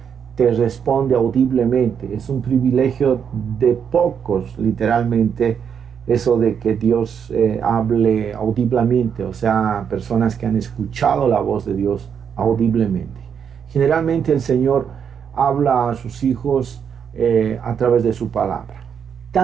te responde audiblemente. Es un privilegio de pocos, literalmente, eso de que Dios hable audiblemente, o sea, personas que han escuchado la voz de Dios audiblemente. Generalmente el Señor habla a sus hijos a través de su palabra.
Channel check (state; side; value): quieter; left; 7.5 dB